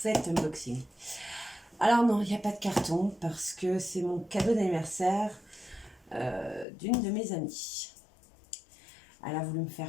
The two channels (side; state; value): right; drops out; at 6.7 s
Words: unboxing. Alors non, il n'y a pas de carton parce que c'est mon cadeau d'anniversaire d'une de mes amies. Elle a voulu me